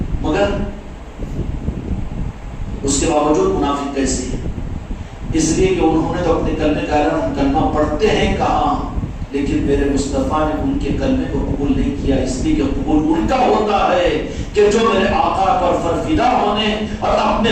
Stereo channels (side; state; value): both; identical; correlation 1.00